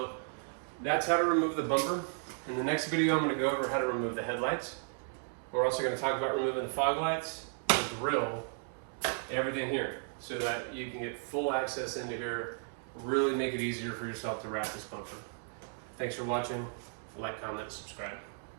that's how to remove the bumper. In the next video, I'm going to go over how to remove the headlights. We're also going to talk about removing the fog lights, the grill, everything here, so that you can get full access into here, really make it easier for yourself to wrap this bumper. Thanks for watching. Like, comment, subscribe.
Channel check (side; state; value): left; silent; 55 dB below the other